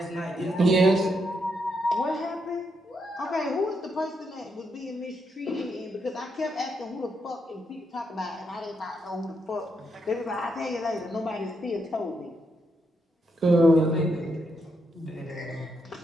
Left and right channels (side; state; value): both; normal; correlation 0.80